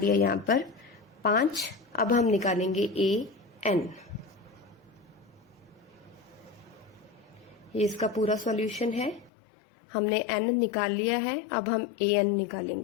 यहाँ पर 5। अब हम निकालेंगे an। ये इसका पूरा सॉल्यूशन है, हमने n निकाल लिया है। अब हम an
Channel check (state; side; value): drops out; right; at 9.3 s